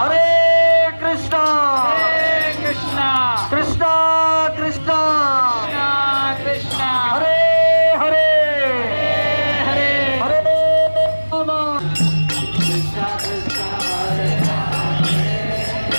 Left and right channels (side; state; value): both; inverted; correlation -1.00